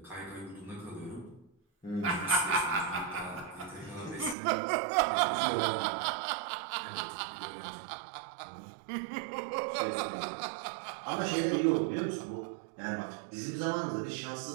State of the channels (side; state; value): left; drops out; at 4.4 s